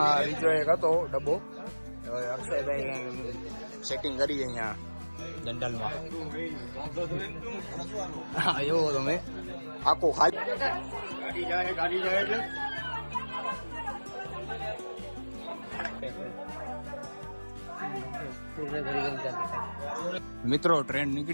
બીજો એક હતો ડબ્બો, અક્ષયભાઈ સેટિંગ કરી અહીંયા જનરલમાં. હા એવો તમે આખો ખાલી ગાડી જાય એટલે મિત્રો ટ્રેન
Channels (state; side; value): inverted; both; correlation -1.00